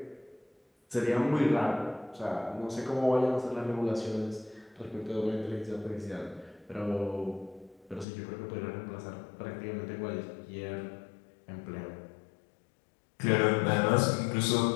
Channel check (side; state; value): right; drops out; at 8.1 s